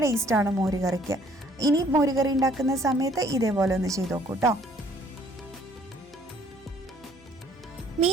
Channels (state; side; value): normal; both; correlation 0.60